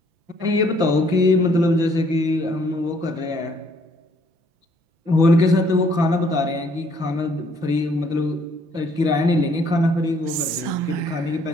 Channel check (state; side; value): late; left; 5.9 ms